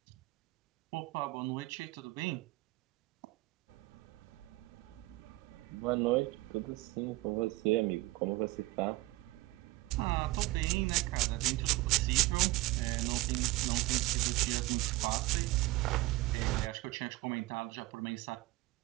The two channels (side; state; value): left; quieter; 19.5 dB